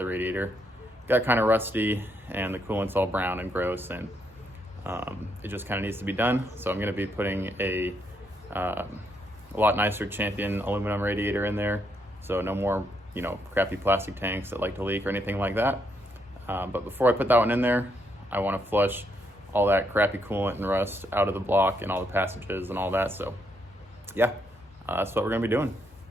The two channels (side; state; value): both; normal; correlation 0.76